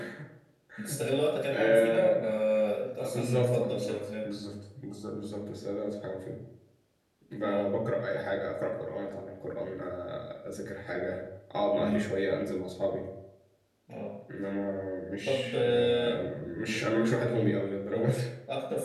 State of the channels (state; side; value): identical; both; correlation 1.00